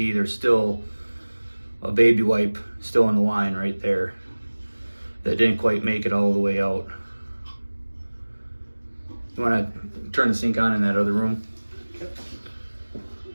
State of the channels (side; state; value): both; inverted; correlation -1.00